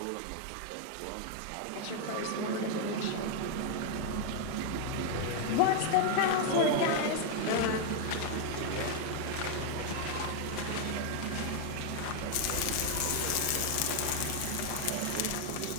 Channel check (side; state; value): both; different; correlation 0.00